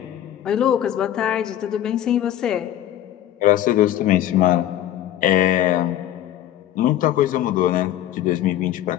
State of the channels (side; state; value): right; quieter; 12.0 dB